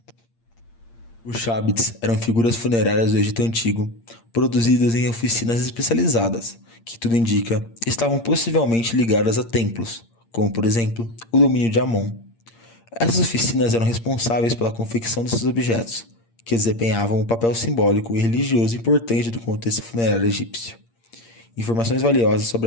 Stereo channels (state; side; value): late; right; 8.7 ms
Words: Os Shabbats eram figuras funerárias do Egito Antigo, produzidas em oficinas especializadas, que tudo indica estavam possivelmente ligadas a templos, como por exemplo o domínio de Amon. Essas oficinas eram responsáveis pela confecção desses objetos, que desempenhavam um papel simbólico e religioso importante do contexto funerário egípcio. Informações valiosas